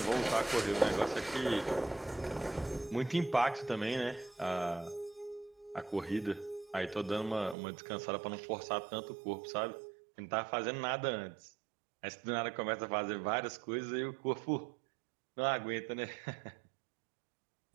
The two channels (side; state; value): left; drops out; at 7.6 s